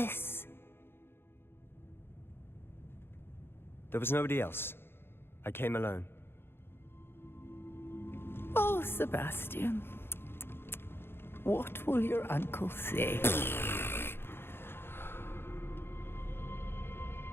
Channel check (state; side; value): late; right; 0.11 ms